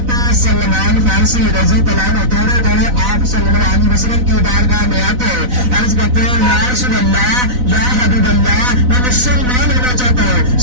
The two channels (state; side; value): late; left; 4.0 ms